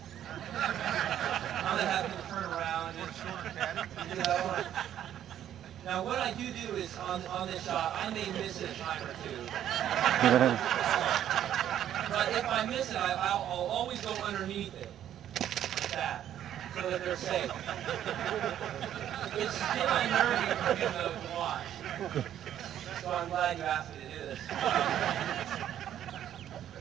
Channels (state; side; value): quieter; left; 10.8 dB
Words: I'm going to have him turn around and do that one. Now, what I do is on this shot, I may miss it a time or two. But if I miss it, I'll always go underneath it, like that, so that they're safe. It's still unnerving for me to watch. So I'm glad you asked me to do this.